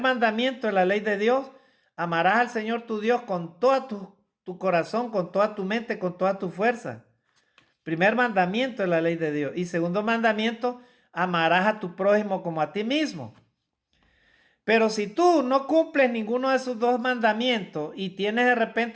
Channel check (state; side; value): identical; both; correlation 1.00